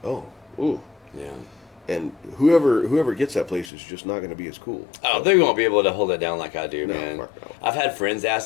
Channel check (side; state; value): right; drops out; at 3.7 s